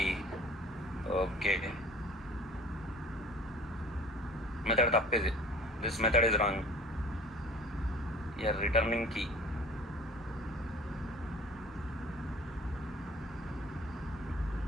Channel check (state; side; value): normal; both; correlation 0.46